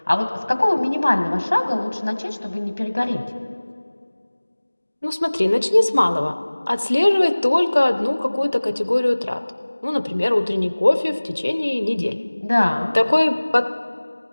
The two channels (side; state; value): both; inverted; correlation -1.00